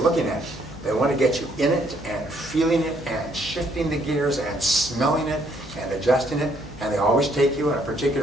at it. They want to get you in it and feeling it and shifting the gears and smelling it and adjusting it. And they always take you on a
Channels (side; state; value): left; noise; hum, 19 dB below the sound